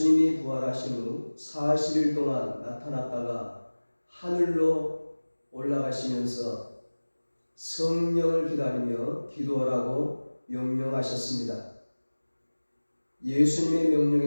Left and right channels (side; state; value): both; inverted; correlation -1.00